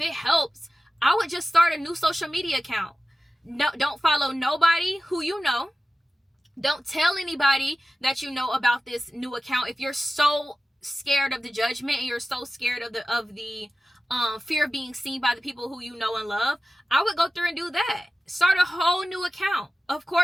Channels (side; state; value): both; normal; correlation 0.95